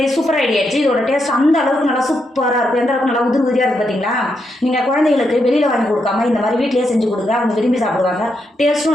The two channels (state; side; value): normal; both; correlation 0.81